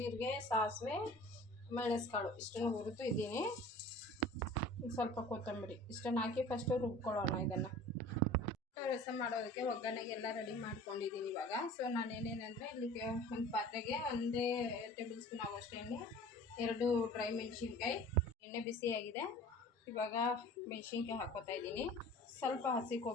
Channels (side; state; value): both; normal; correlation 0.43